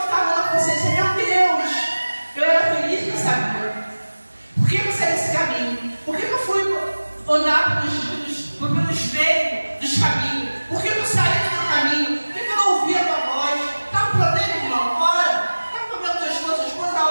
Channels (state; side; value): inverted; both; correlation -1.00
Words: estava na consciência, meu Deus, eu era feliz que sabia. Por que eu saí desse caminho? Por que eu fui andar pelo espelho dos caminhos? Por que eu saí do meu caminho? Por que eu não ouvi a tua voz? Está com problema, irmão? Ora. Está com problema com tua esposa?